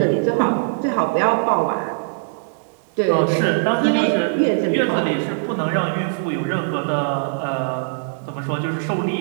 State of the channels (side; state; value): left; silent; 65 dB below the other